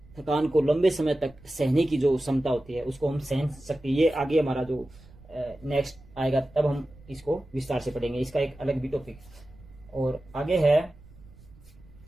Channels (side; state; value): right; noise; rumble, 23 dB below the sound